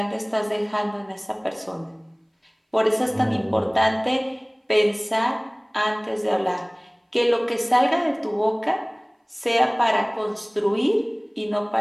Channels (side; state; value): both; identical; correlation 1.00